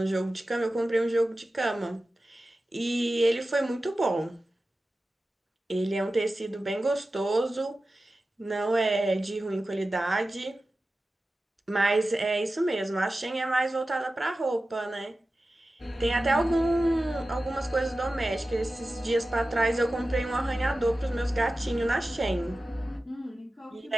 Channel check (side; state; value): both; normal; correlation 0.95